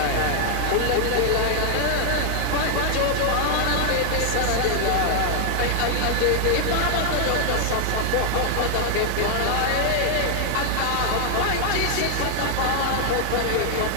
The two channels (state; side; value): different; both; correlation 0.00